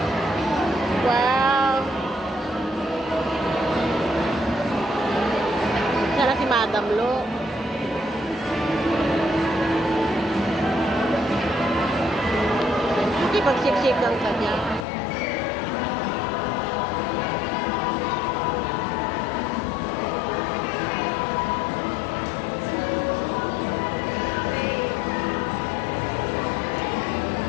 Wow. Sana si Madam Lo. Hindi pagsiksikan ka niya.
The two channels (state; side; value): drops out; right; at 14.9 s